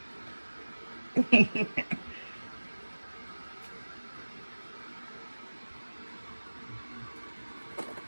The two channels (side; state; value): both; inverted; correlation -1.00